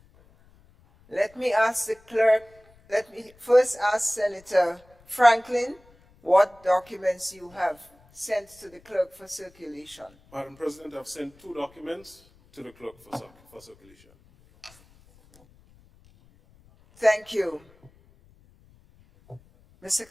Let me ask the clerk, let me first ask Senator Franklin what documents you have sent to the clerk for circulation. Madam President, I've sent 2 documents to the clerk for circulation. Thank you. Mr.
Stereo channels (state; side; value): noise; left; rumble, 29 dB below the sound